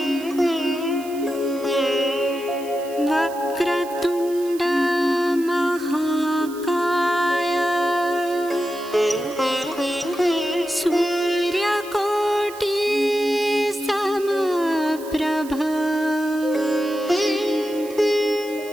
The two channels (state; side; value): noise; right; hiss, 18 dB below the sound